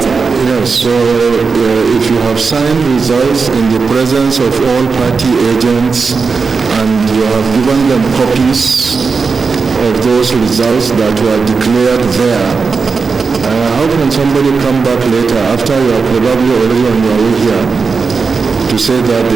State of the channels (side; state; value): left; quieter; 4.9 dB